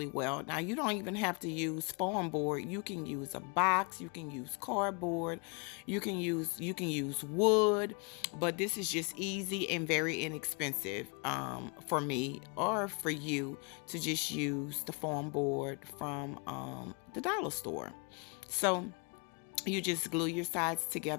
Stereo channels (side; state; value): right; quieter; 34.4 dB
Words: well. Now you don't even have to use foam board. You can use a box, you can use cardboard, you can use wood, but this is just easy and very inexpensive for me or for you to just use the foam board from the dollar store. So you just glue your sides